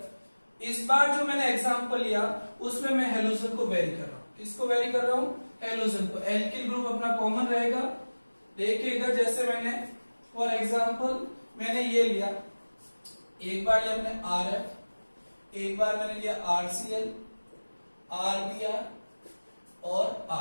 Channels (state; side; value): inverted; both; correlation -1.00